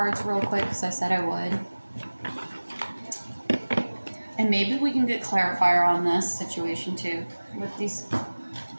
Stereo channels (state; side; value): inverted; both; correlation -1.00